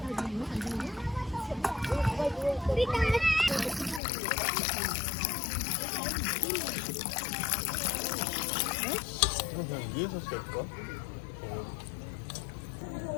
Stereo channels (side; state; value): right; drops out; at 4.0 s